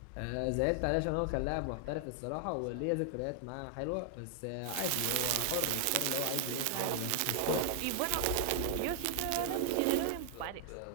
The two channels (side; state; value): both; different; correlation 0.00